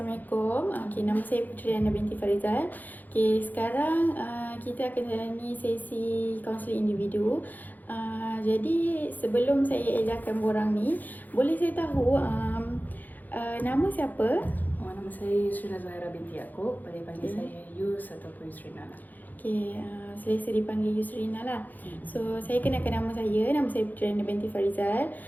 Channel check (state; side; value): late; right; 0.084 ms